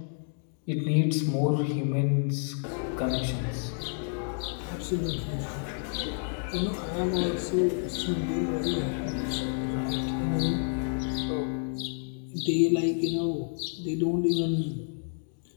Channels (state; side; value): silent; right; 58 dB below the other